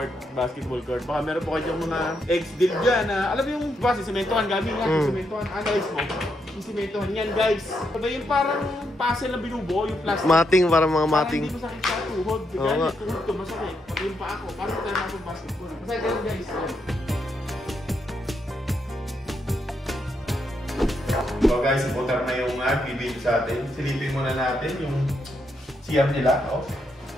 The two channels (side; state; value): both; normal; correlation 0.80